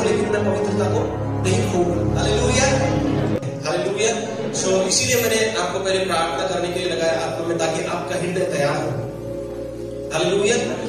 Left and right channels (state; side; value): identical; both; correlation 1.00